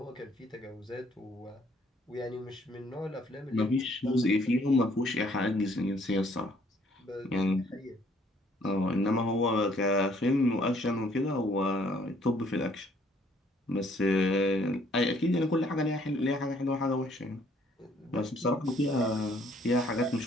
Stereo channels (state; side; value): normal; both; correlation 0.63